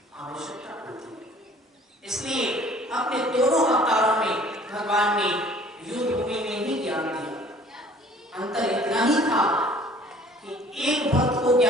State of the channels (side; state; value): both; normal; correlation 0.53